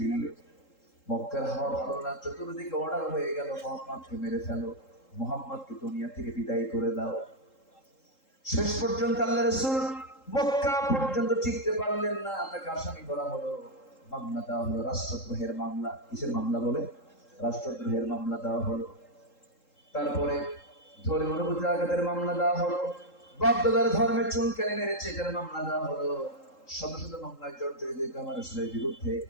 মক্কার হাওয়া ভালো না, চতুর্দিকে অর্ডার হয়ে গেল, মুহাম্মদকে মেরে ফেলো, মুহাম্মদকে দুনিয়া থেকে বিদায় করে দাও। শেষ পর্যন্ত আল্লাহ রাসূল মক্কা পর্যন্ত টিকতে পারলেন না, তাকে আসামি করা হলো, মামলা দেওয়া হলো, রাষ্ট্রদ্রোহের মামলা। কিসের মামলা বলে? রাষ্ট্রদ্রোহের মামলা দেওয়া হলো। তারপরে ধর্মীয় অনুভূতি আঘাতের মামলা দেওয়া হলো, বাপদাদার ধর্মের চুনকানি মেরেছে এটার মামলা দেওয়া হলো। শত শত মামলায় জর্জরিত আমার রাসূলের বিরুদ্ধে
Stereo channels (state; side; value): late; right; 3.8 ms